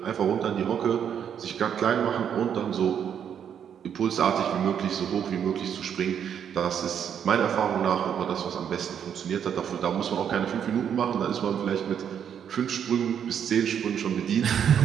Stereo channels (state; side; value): quieter; left; 8.5 dB